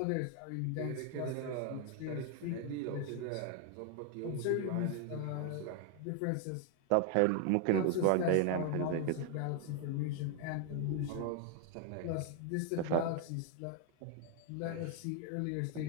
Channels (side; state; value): both; different; correlation 0.01